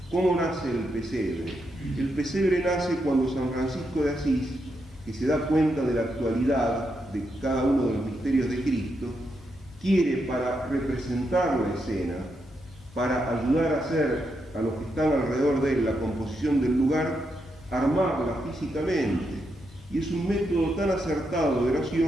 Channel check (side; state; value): both; normal; correlation 0.82